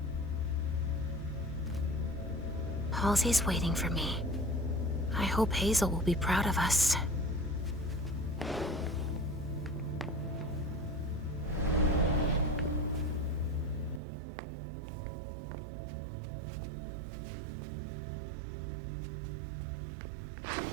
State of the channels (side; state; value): left; drops out; at 14.0 s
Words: Halsey's waiting for me. I hope Hazel will be proud of us.